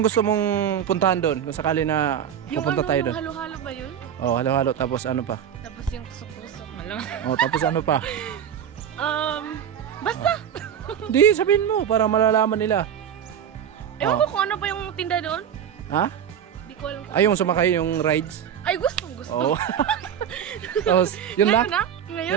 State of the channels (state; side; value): quieter; left; 8.9 dB